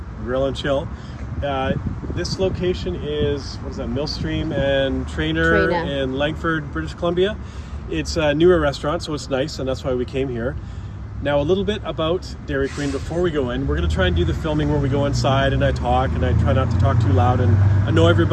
Grill and Chill. This location is, Millstream and Trainer in Langford, British Columbia. It's a newer restaurant, so it's nice, and that's why we came here. Now, a little bit about Dairy Queen before we go in. We're going to try and do the filming where we go inside and I talk, and I try not to talk too loud and annoy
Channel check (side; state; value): both; identical; correlation 1.00